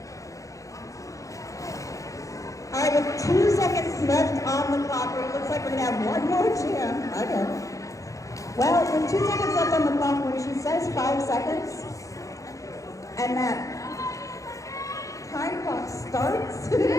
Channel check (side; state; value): right; late; 0.16 ms